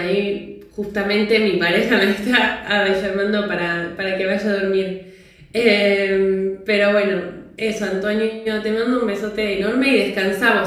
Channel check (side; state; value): both; identical; correlation 1.00